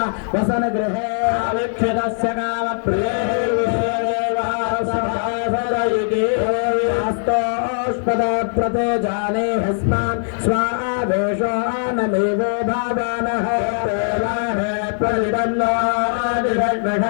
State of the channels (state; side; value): silent; right; 66 dB below the other